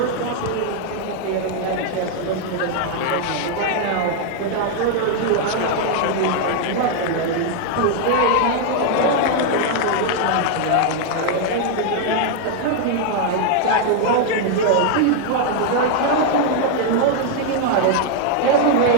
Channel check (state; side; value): different; both; correlation 0.00